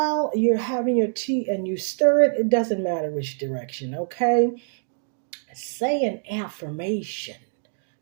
you're having your tea and you stir it, it doesn't matter which direction. Okay, say an affirmation,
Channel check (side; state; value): left; silent; 62 dB below the other